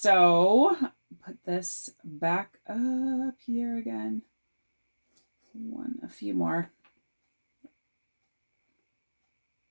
put this back up here again. A few more.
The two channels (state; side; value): inverted; both; correlation -1.00